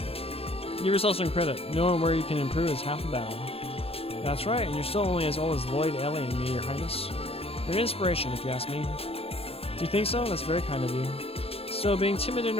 Give yourself some credit. Knowing where you can improve is half the battle. That's right, and you're still only as old as Lloyd, Ellie, and me, Your Highness. You're an inspiration, if you ask me. Do you think so? That's very kind of you. Still, being timid in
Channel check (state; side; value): late; right; 0.28 ms